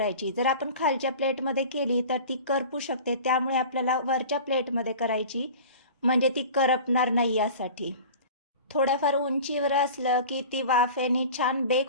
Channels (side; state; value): both; inverted; correlation -0.38